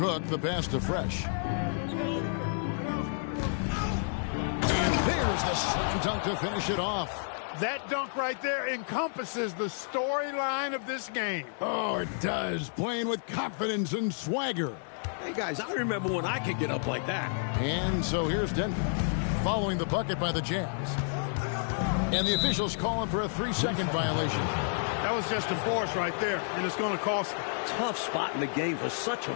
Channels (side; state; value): right; silent; 58 dB below the other